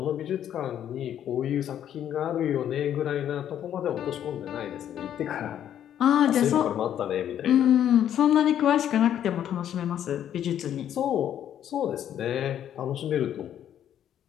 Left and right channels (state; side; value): quieter; right; 10.3 dB